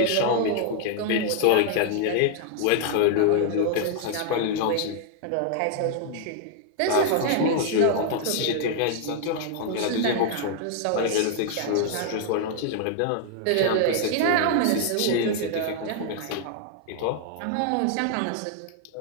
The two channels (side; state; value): both; different; correlation 0.00